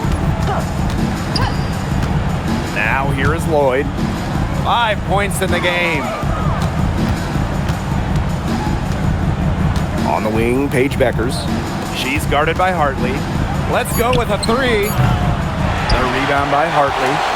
Now here is Lloyd. 5 points in the game. On the wing, Paige Beckers. She's guarded by Hartley. Let's go with a 3. The rebound by Hartley.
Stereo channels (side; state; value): both; identical; correlation 1.00